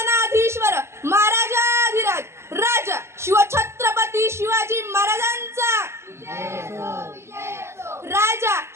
महाराजाधिराज राजा शिवछत्रपती शिवाजी महाराजांचा राजा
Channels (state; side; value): late; left; 0.13 ms